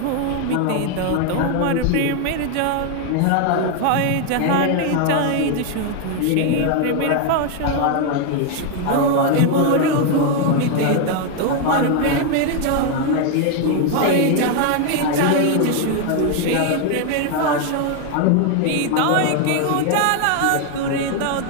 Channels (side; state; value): both; different; correlation 0.01